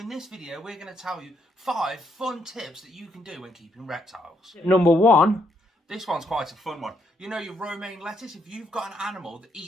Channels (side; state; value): both; normal; correlation 0.75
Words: this video, we're going to tell you 5 fun tips that you can do when keeping reptiles. Number 1. This one's quite a fun one. You know your romaine lettuce? If you've got an animal that